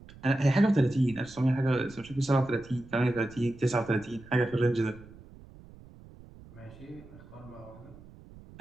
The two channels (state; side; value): noise; right; rumble, 20 dB below the sound